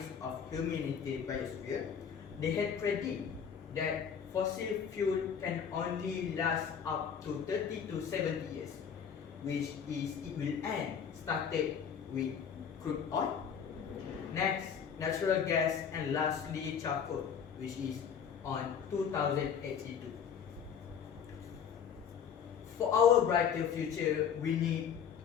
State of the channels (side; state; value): right; quieter; 7.5 dB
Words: of Humanity Biosphere, they had predicted that fossil fuel can only last up to 30 to 70 years, which is it will end started with crude oil, next natural gas, and lastly charcoal, which is on 2082. For our brighter future, we need